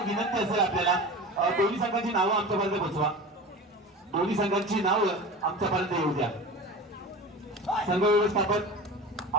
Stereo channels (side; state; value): both; normal; correlation 0.33